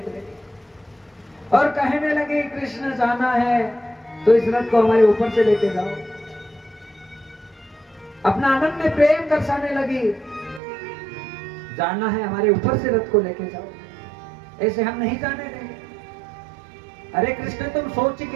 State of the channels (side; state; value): left; drops out; at 10.6 s